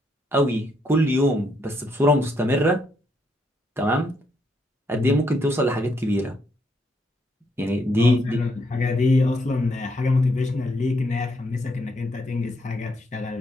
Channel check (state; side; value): normal; both; correlation 0.75